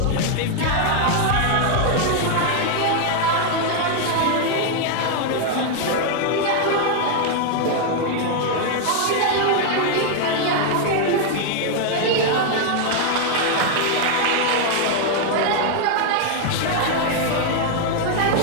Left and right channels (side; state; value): both; different; correlation 0.00